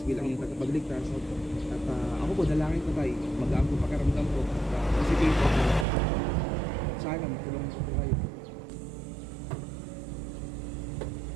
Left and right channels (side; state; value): left; drops out; at 5.9 s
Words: bilang iyong tagapagligtas. At ako po, dalangin ko tayo. Magaan po pakiramdam ko. Positive po. Sana matulungan po kayo.